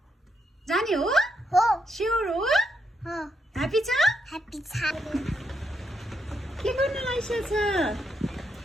जाने हो? हो। स्योर हो? हो। ह्यापी छ? ह्यापी छ। के गर्न लागिसक्छ?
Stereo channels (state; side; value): normal; both; correlation 0.80